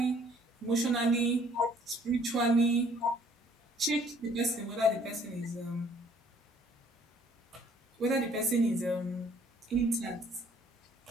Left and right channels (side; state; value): both; normal; correlation 0.60